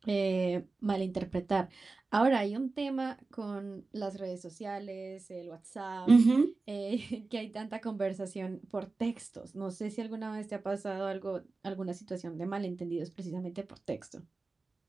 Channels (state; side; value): quieter; left; 3.7 dB